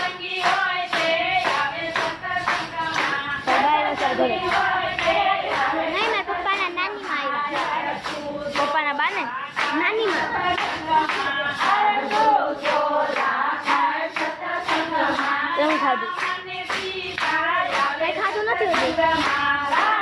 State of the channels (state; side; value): identical; both; correlation 1.00